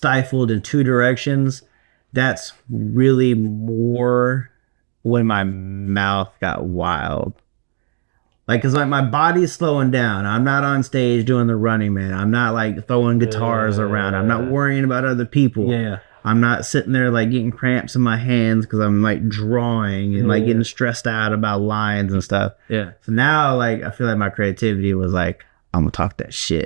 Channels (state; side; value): silent; left; digital silence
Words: in two directions, that's really more when my mouth got wild. Like, cause like my body's slowing down. I'm not on stage doing the Running Man. I'm not like throwing guitars around. I'm not worrying about other people. Yeah. I'm not sitting there like getting cramps in my hands because I'm like drawing and like getting stressed out about lines and stuff. Yeah. So now like I feel like my creativity was like, I'm gonna talk that shit.